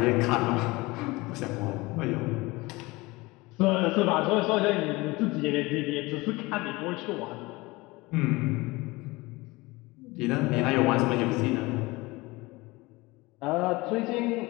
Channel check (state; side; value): quieter; right; 22.4 dB